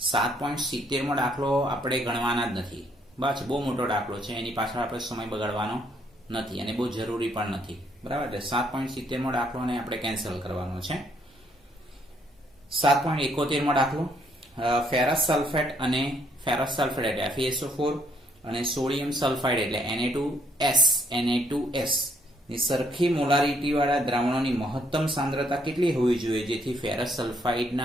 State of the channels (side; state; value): both; normal; correlation 0.70